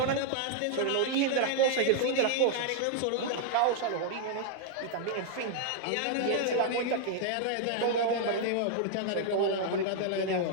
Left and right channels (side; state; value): both; different; correlation 0.00